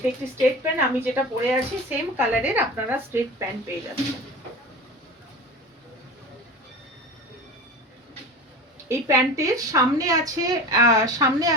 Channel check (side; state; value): both; normal; correlation 0.33